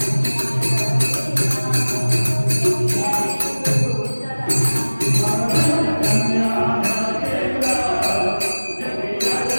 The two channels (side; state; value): both; inverted; correlation -1.00